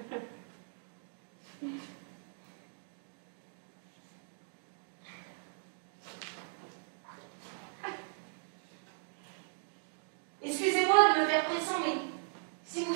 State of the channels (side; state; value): left; silent; 53 dB below the other